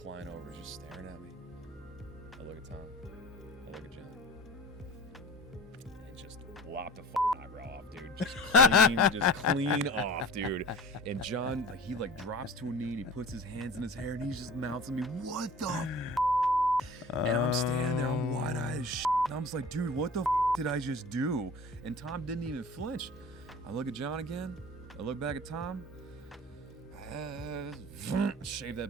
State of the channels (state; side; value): normal; both; correlation 0.40